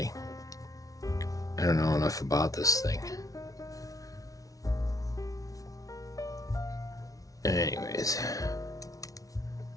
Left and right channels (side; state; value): right; late; 0.17 ms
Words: I don't know enough about this thing. Anyways.